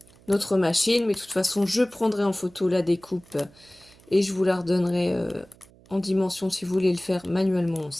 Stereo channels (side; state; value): right; noise; hum, 27 dB below the sound